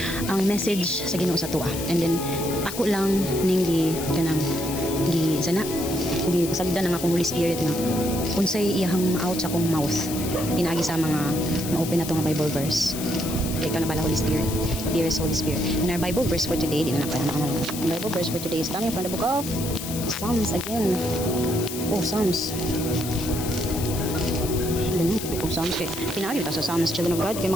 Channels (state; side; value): noise; left; hiss, 8 dB below the sound